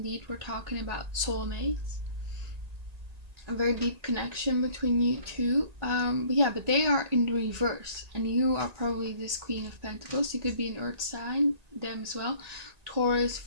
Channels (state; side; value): late; left; 1.9 ms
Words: we're talking about soulmates. A very deep connection between you two. But they are in reverse. And you are probably this Queen of Pentacles. You could be an Earth sign, them as well. Taurus,